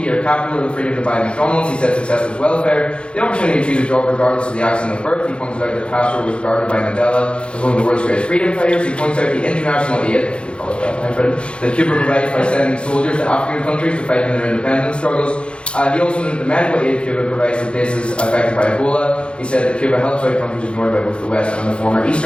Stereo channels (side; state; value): right; late; 0.057 ms